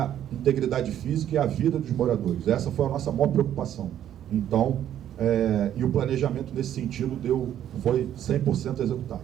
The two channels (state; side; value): quieter; left; 10.9 dB